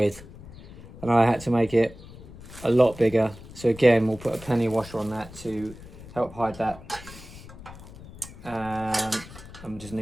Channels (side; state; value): left; noise; rumble, 17 dB below the sound